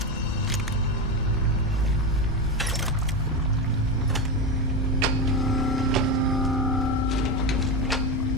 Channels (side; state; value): both; normal; correlation 0.15